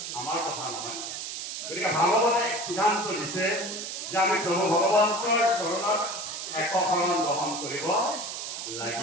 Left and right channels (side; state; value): right; noise; hiss, 6 dB below the sound